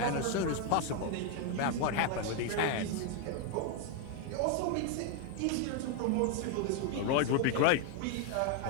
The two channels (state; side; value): different; both; correlation 0.01